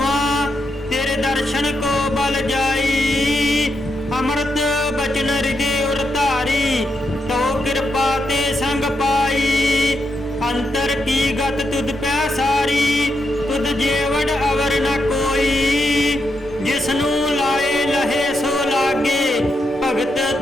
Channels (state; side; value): noise; right; hum, 25 dB below the sound